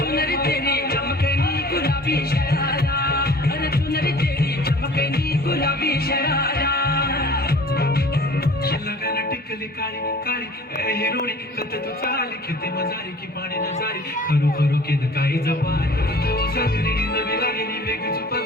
चुनरी तेरी चमकनी गुलाबी शरारा अरे चुनरी तेरी चमकनी गुलाबी शरारा लगन टिकली काळी काळी ए हिरोणी कत तू चाली खेते मजारी की पाणी नजारी खरू खरू केद काही जपाय तू सगरी नवी लागली वेग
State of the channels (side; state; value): both; normal; correlation 0.46